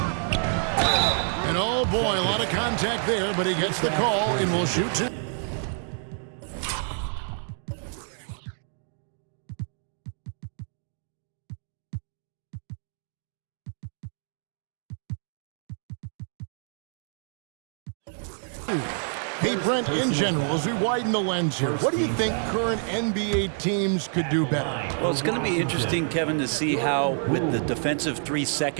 And oh boy, a lot of contact there, but he gets the call and will shoot 2. Hey, Brent, in general, as we widen the lens here, what do you think current NBA teams could do better? Well, it's going to be interesting, Kevin, to see how, with the defensive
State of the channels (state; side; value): silent; left; 60 dB below the other